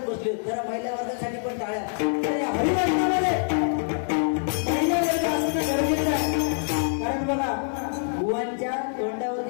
बसले. जरा महिला वर्गासाठी पण टाळ्या. हरिवर्गामध्ये महिला वर्ग असणं गरजेचं आहे. कारण बघा बुवांच्या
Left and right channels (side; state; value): right; silent; 59 dB below the other